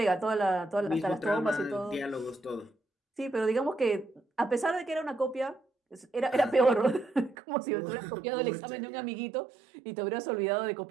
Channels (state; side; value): drops out; left; at 7.4 s